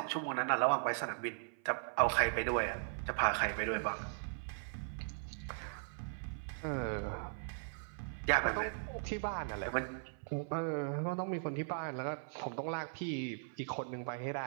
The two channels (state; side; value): silent; left; 52 dB below the other